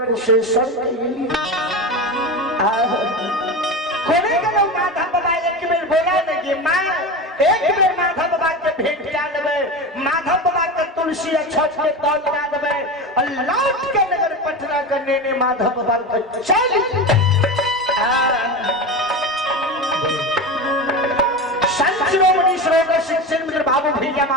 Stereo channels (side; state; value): both; normal; correlation 0.24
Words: कोने के लोग माधव बाबा एक बेर बोला नहीं माँ एक बेर माधव बाबा के भेंट क्या देवे माधव बाबा के तुलसी छठ के तौल क्या देवे और लौट के नगर पटना करने ने माधव बाबा को चल संत शिरोमणि सरोवर शिक्षण मित्र बाबू भैया